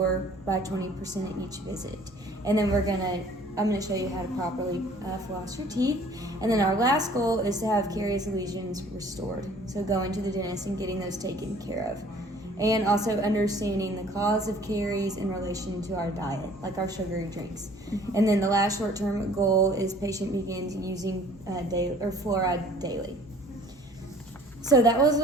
by 20% at each visit. And then we're going to I'm going to show you how to properly floss your teeth. And then our last goal is to have caries lesions restored. So going to the dentist and getting those taken care of. And also understanding the cause of caries in relation to our diet, like our sugary drinks. And then the last short-term goal is patient begins using fluoride daily. So that was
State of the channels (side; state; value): both; normal; correlation 0.53